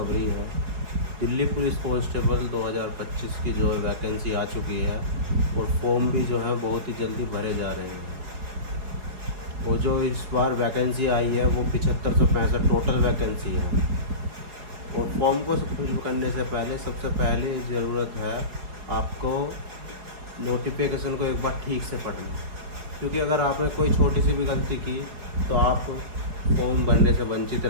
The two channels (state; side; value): late; left; 4.9 ms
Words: है। दिल्ली पुलिस कांस्टेबल 2025 की जो वैकेंसी आ चुकी है और फॉर्म भी जो है बहुत ही जल्दी भरे जा रहे हैं। और जो इस बार वैकेंसी आई है वो 7565 टोटल वैकेंसी है। और फॉर्म को फिल करने से पहले सबसे पहले ज़रूरत है आपको नोटिफिकेशन को एक बार ठीक से पढ़ना, क्योंकि अगर आपने कोई छोटी सी भी गलती की तो आप फॉर्म भरने से वंचित